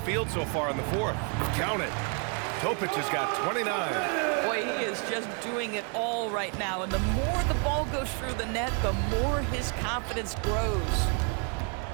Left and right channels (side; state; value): left; quieter; 38.6 dB